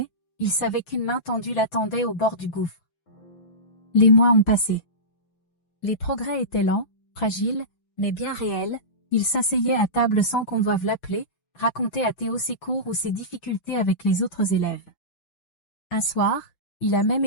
Il savait qu'une main tendue l'attendait au bord du gouffre. Les mois ont passé. Les progrès étaient lents, fragiles, mais bien réels. Il s'asseyait à table sans qu'on doive l'appeler, racontait à Théo ses cours ou ses difficultés avec les autres élèves. Un soir, il a même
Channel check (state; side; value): late; right; 6.0 ms